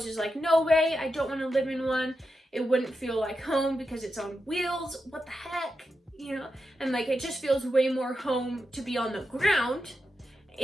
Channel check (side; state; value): both; normal; correlation 0.88